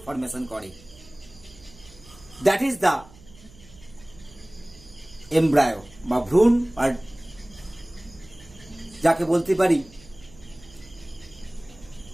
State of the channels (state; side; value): noise; right; hum, 22 dB below the sound